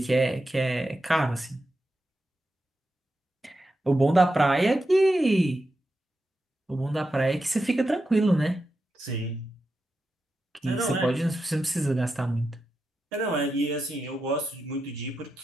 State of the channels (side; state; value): both; normal; correlation 0.89